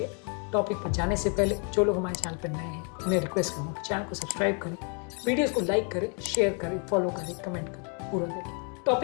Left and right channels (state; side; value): quieter; right; 38.2 dB